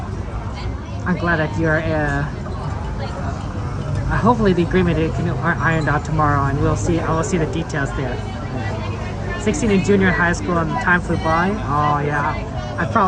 you're. Hopefully the agreement are ironed out tomorrow, and we'll see. I will see the details there. 16 in junior high school, and time flew by. Oh yeah. I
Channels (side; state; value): both; identical; correlation 1.00